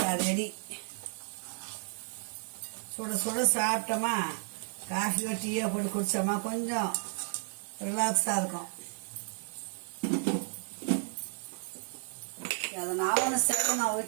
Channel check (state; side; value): silent; left; 56 dB below the other